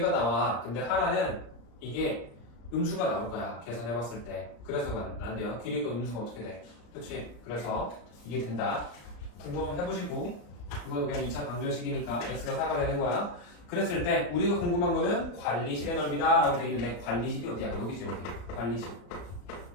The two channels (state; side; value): late; right; 34 ms